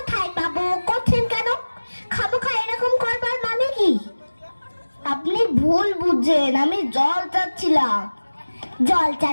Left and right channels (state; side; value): inverted; both; correlation -1.00